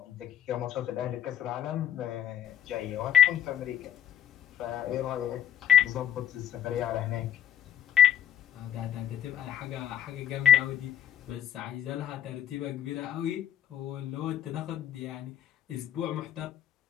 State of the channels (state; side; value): quieter; right; 10.2 dB